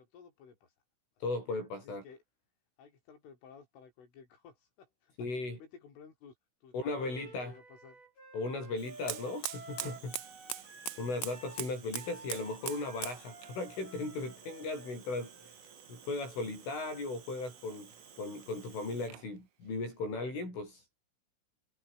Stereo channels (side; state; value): right; late; 16 ms